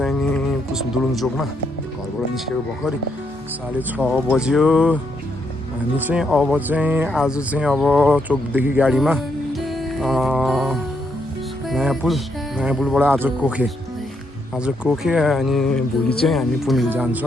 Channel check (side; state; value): both; normal; correlation 0.77